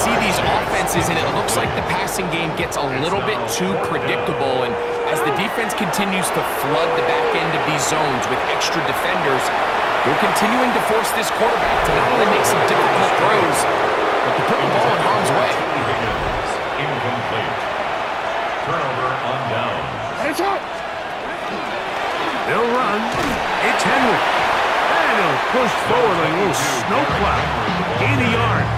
these offenses, and it looks like the passing game gets a little bit too predictable. And as the defense continues to flood the back end of these zones with extra defenders, they're continuing to force this quarterback to not only make some difficult throws, but to put the ball in harm's way. Incomplete. Turnover on down. They'll run. It's Henry. And he'll push forward a little snowplow. Gain a yard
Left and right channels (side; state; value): both; identical; correlation 1.00